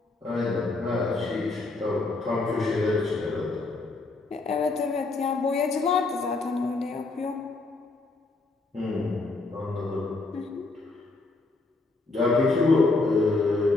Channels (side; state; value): right; quieter; 3.4 dB